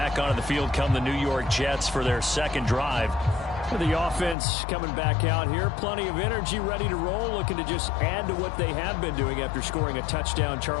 onto the field come the New York Jets for their second drive. The offense coming back out here. Plenty of energy, ready to roll, looking to just add to what they have been doing after scoring a touchdown,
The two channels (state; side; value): drops out; right; at 4.4 s